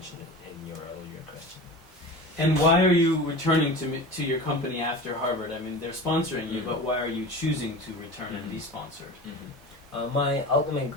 in your earlier question. And why are you returning to your company after Harvard? I mean, they're sponsoring you, but why are you choosing to return and be sponsored? My ultimate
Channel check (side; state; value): both; normal; correlation 0.33